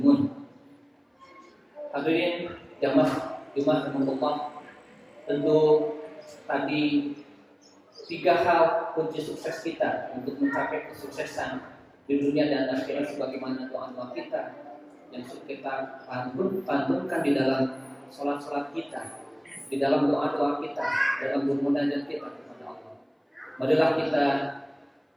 Hadirin jamaah rahmatullah, tentu tadi 3 hal kunci sukses kita untuk mencapai kesuksesan di dunia dan akhirat sebagaimana doa-doa kita yang kita pantunkan di dalam sholat-sholat kita, di dalam doa-doa kita, dalam bermunajat kita kepada Allah. Marilah kita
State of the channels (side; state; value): both; identical; correlation 1.00